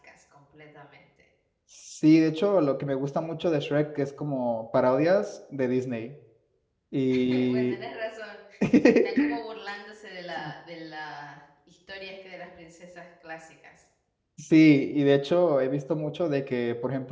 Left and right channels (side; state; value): both; identical; correlation 1.00